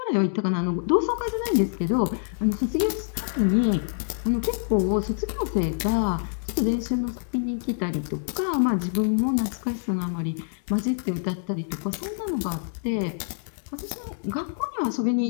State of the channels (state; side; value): silent; right; digital silence